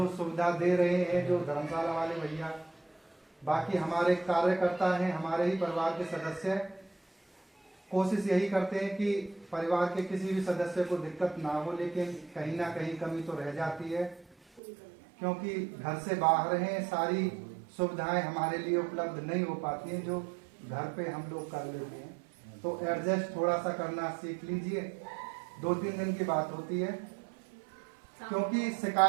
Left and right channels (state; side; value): drops out; left; at 14.6 s